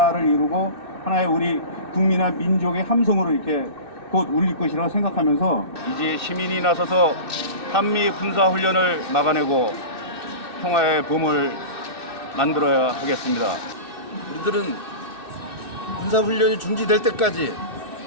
이루고 하나의 우리 국민과 민족의 함성으로 이렇게 곧 울릴 것이라고 생각하면서 이제 시민이 나서서 한미 군사훈련을 막아내고 평화의 봄을 만들어야 하겠습니다. 우리들은 군사훈련이 중지될 때까지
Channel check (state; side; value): late; left; 2.6 ms